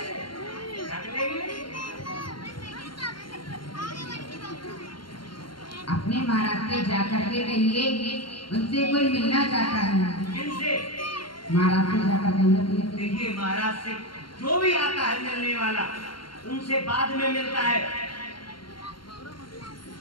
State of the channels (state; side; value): late; right; 0.72 ms